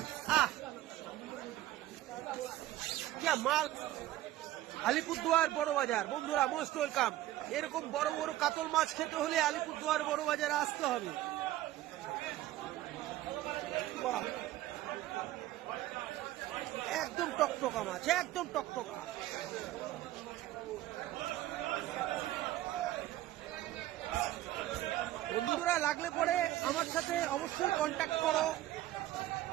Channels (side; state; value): left; quieter; 14.8 dB